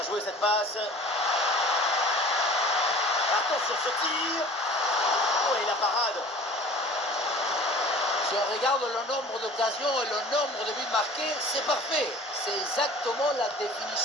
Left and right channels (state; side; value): normal; both; correlation 0.44